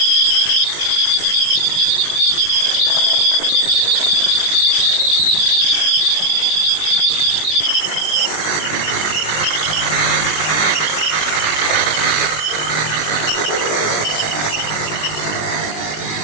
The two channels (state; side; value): late; right; 20 ms